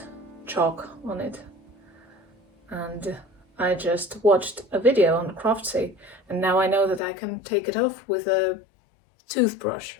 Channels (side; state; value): right; drops out; at 7.0 s